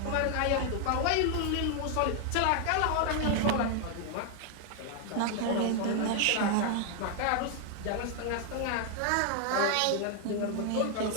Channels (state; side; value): different; both; correlation 0.00